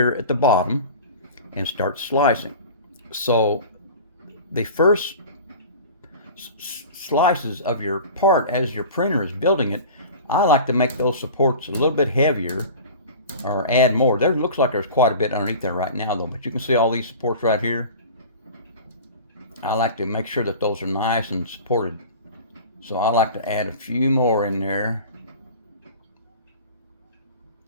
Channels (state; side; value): inverted; both; correlation -0.38